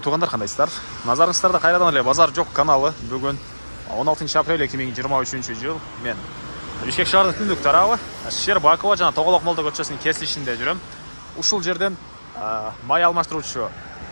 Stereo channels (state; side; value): inverted; both; correlation -1.00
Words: туғандар, қандайсыздар? Назарыңыздарда қайрадан эле Базар жок каналы. Бүгін 16 апрель 2023 жыл. Мен Бишкек шаарынын түндүк тарабы Щербакова жана Тоголок Молдо көчөсүнүн кесилишинде жүрөм. Ушул жерден май алмаштыруучу